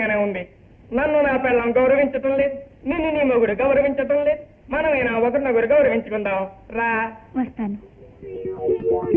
ఉంది. నన్ను నా పిల్లం గౌరవించటం లేదు, నిన్ను నీ మొగుడు గౌరవించటం లేదు. మనమైనా ఒకరినొకరు గౌరవించుకుందాం. రా, వస్తాను.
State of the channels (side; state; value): both; identical; correlation 1.00